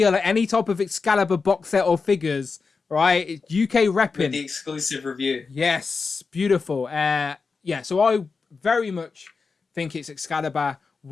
any type of Excalibur box set or figures. Right, it's UK repping with the exclusive review. Yes, beautiful. So I very much think it's Excalibur.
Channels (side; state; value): right; quieter; 4.7 dB